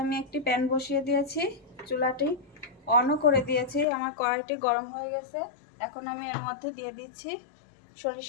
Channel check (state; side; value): drops out; right; at 3.9 s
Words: আমি একটি প্যান বসিয়ে দিয়েছি, চুলাটি অনও করে দিয়েছি। আমার কড়াইটি গরম হয়ে গেছে। এখন আমি এর মধ্যে দিয়ে দিচ্ছি